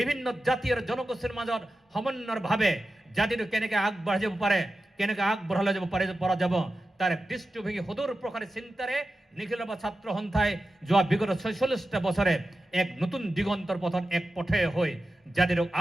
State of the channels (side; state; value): both; normal; correlation 0.92